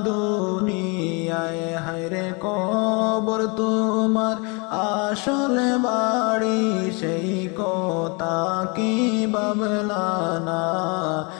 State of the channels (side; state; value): right; quieter; 31.1 dB